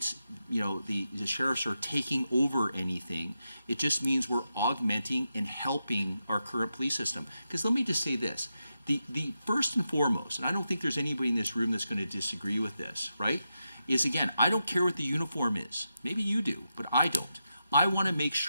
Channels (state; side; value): inverted; both; correlation -0.88